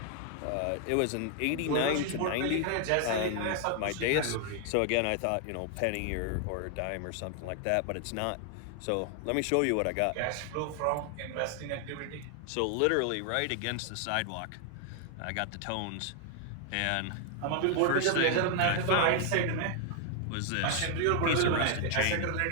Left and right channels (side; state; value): both; different; correlation 0.00